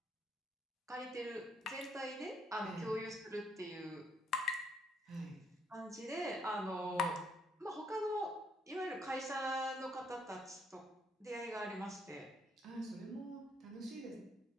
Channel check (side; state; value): both; normal; correlation 0.71